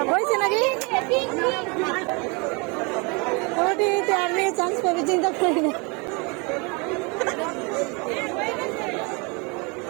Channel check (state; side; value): quieter; left; 30.4 dB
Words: হয়েছে নাকি ওটি আমি চান্স পাবি চিন্তা করি না